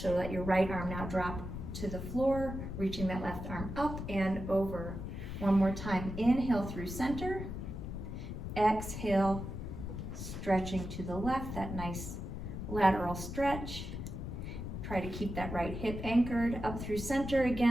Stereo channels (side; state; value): left; noise; rumble, 6 dB below the sound